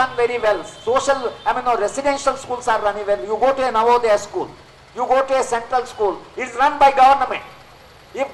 very well. Residential schools are running well. You go to a Navodaya school, you go to a central school, it is run by government. If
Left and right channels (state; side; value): identical; both; correlation 1.00